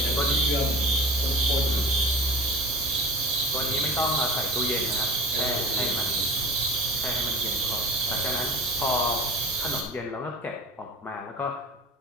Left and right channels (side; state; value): both; normal; correlation 0.37